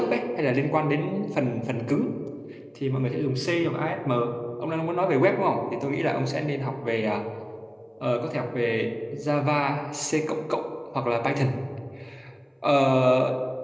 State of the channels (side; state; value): both; identical; correlation 1.00